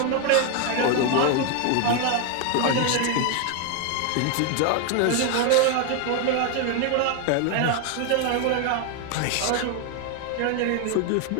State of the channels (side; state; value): both; different; correlation 0.01